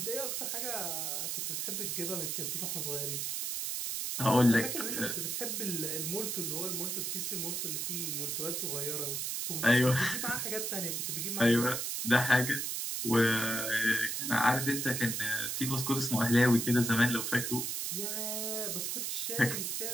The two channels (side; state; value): right; noise; hiss, 1 dB below the sound